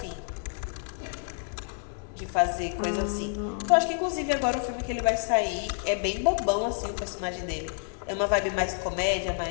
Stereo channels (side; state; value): right; silent; 57 dB below the other